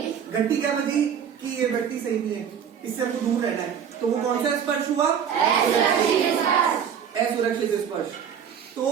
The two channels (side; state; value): left; quieter; 8.0 dB